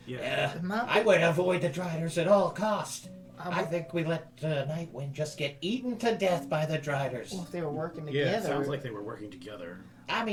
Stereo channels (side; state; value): both; identical; correlation 1.00